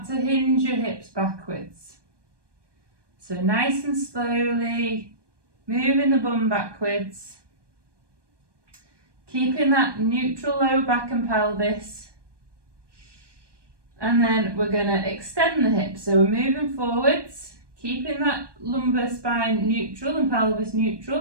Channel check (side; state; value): left; late; 1.2 ms